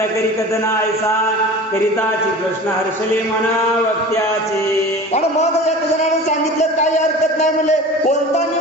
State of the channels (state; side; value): normal; both; correlation 0.37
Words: करी कथना ऐसा करिताची कृष्ण हर्षले मना वक्त्याचे. आणि मग एक जणाने सांगितलं काही हरकत नाही म्हणले, कोणता